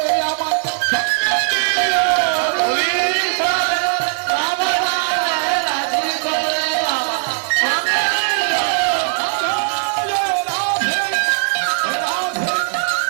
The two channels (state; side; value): silent; left; digital silence